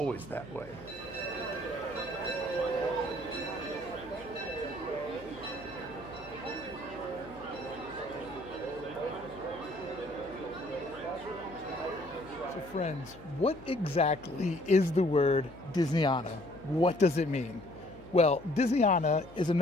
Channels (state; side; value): noise; left; hum, 21 dB below the sound